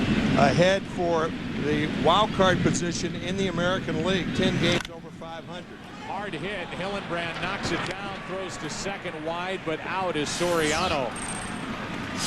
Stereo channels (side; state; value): both; identical; correlation 1.00